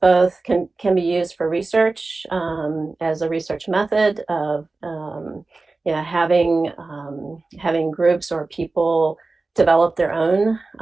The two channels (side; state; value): left; quieter; 3.6 dB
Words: both can be used for research as a research method of having groups or people develop their own